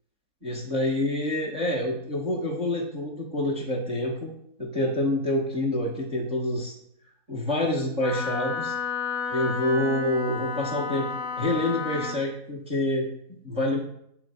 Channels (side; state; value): left; late; 4.1 ms